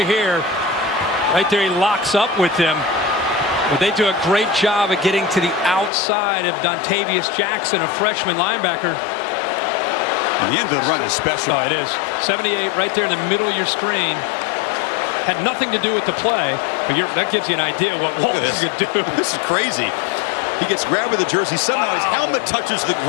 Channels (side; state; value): right; drops out; at 5.9 s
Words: here. Right there, he locks up with him. But they do a great job of getting to the outside of Dontavius Jackson, a freshman linebacker. And the end of the run is special. Oh, it is. 78 right there in the middle of your screen. Had nothing to do with the play, but that gives you an idea what Walton could do. This is crazy. He gets grabbed with the jersey. Somehow his helmet touches the